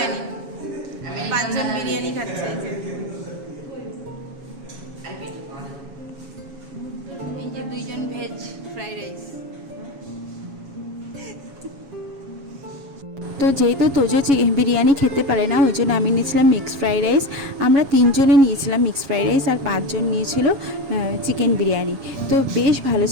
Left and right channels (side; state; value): left; late; 7.2 ms